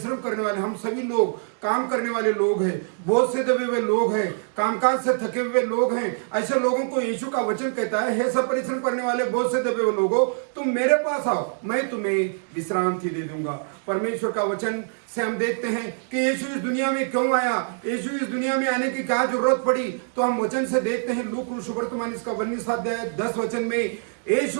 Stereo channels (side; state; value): left; silent; digital silence